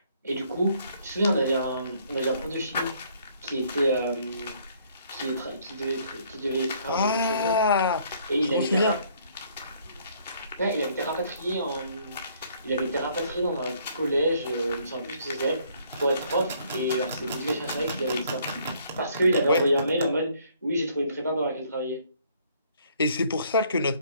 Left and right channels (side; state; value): both; inverted; correlation -0.64